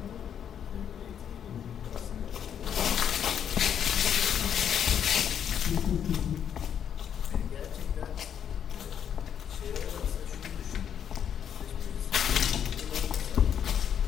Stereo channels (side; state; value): right; quieter; 8.7 dB